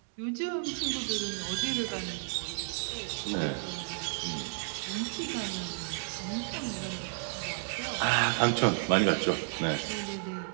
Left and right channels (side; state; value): left; silent; digital silence